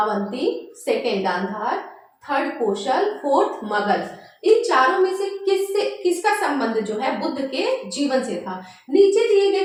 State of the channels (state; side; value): identical; both; correlation 1.00